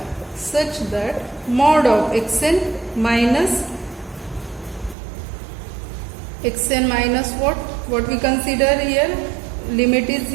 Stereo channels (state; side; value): drops out; left; at 5.0 s